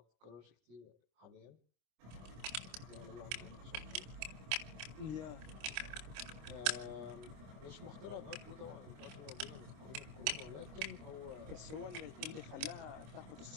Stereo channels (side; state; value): left; late; 27 ms